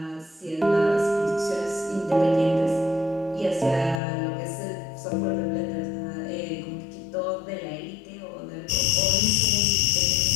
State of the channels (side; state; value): right; drops out; at 4.0 s